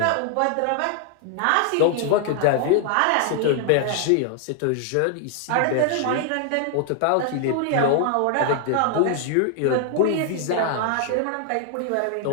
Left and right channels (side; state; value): both; different; correlation 0.00